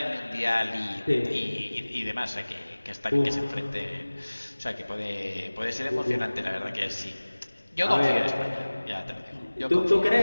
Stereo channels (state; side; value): inverted; both; correlation -1.00